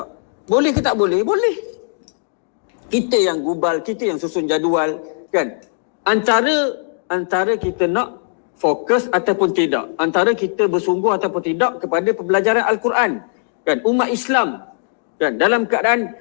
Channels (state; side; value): silent; right; digital silence